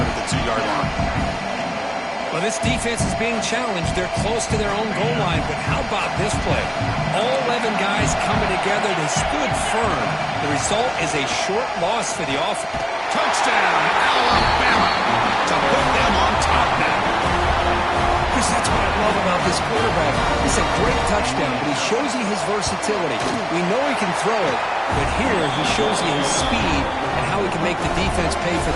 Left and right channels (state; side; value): identical; both; correlation 1.00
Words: at the 2-yard line. Well, this defense is being challenged. They're close to their own goal line, but how about this play? All 11 guys coming together. They stood firm. The result is a short loss for the offense. Touchdown, Alabama, to put them on top now. Chris, that's what I love about this quarterback. It's a great touchdown, but he shows you his versatility. We know he can throw it, but here he shows you his speed and how he can make the defense pay for